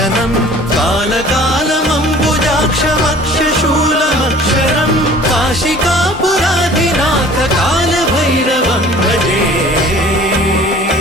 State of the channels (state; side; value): normal; both; correlation 0.48